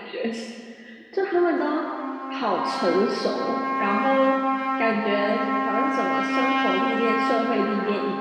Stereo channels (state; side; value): identical; both; correlation 1.00